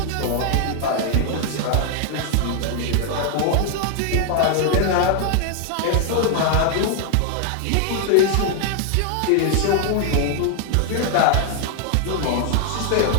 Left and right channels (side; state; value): both; different; correlation 0.00